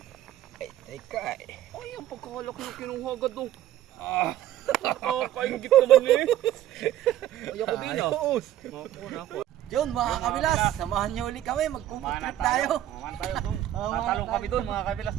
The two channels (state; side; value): quieter; left; 12.6 dB